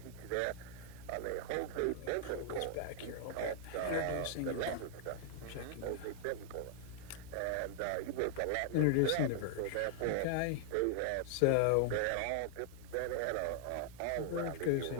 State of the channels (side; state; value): both; different; correlation 0.00